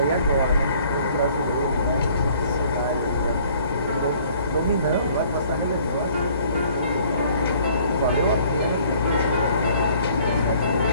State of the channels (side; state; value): both; inverted; correlation -0.57